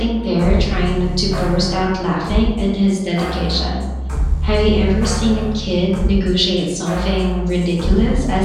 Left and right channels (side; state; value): both; identical; correlation 1.00